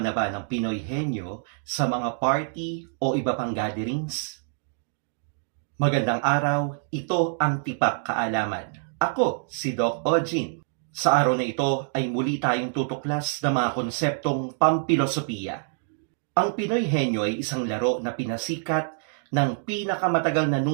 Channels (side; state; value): left; silent; digital silence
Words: ba ng Pinoy Henyo sa mga party o iba pang gatherings? Magandang araw, ito ang Tipak Kaalaman. Ako si Doc Ojin. Sa araw na ito ay muli tayong tutuklas ng mga konseptong pampilosopiya. Ang Pinoy Henyo ay isang laro na pinasikat ng pinakamatagal na